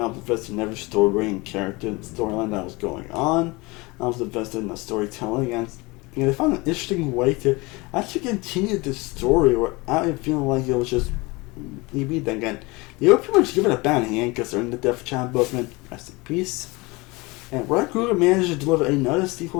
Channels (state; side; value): quieter; right; 24.4 dB